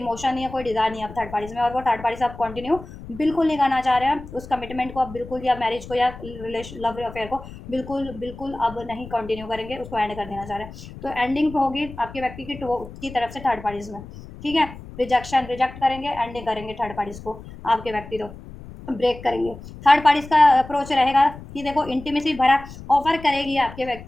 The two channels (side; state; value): left; noise; rumble, 15 dB below the sound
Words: नहीं है, कोई डिजायर नहीं है थर्ड पार्टीज में, और वो थर्ड पार्टी से आप कंटिन्यू बिल्कुल नहीं करना चाह रहे हैं उस कमिटमेंट को, आप बिल्कुल, या मैरिज को, या रिलेशन लव अफेयर को बिल्कुल बिल्कुल अब नहीं कंटिन्यू करेंगे, उसको एंड कर देना चाह रहे हैं, तो एंडिंग होगी आपके व्यक्ति की तरफ से थर्ड पार्टीज में, ठीक है, रिजेक्ट करेंगे, एंडिंग करेंगे थर्ड पार्टीज को, आपके व्यक्ति तो ब्रेक करेंगे, थर्ड पार्टीज का अप्रोच रहेगा कि देखो इंटीमेसी भरा ऑफर करेगी आपके